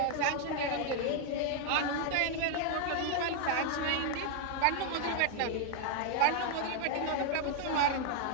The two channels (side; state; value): both; different; correlation 0.00